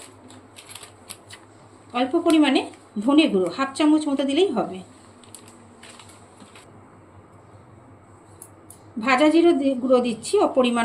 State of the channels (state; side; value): identical; both; correlation 1.00